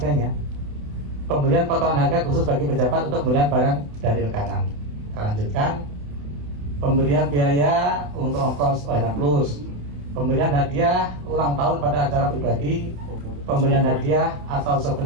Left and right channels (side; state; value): left; late; 28 ms